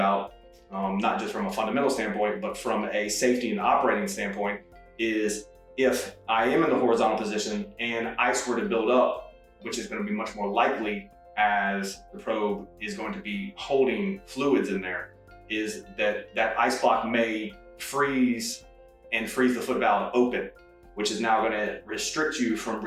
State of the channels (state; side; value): identical; both; correlation 1.00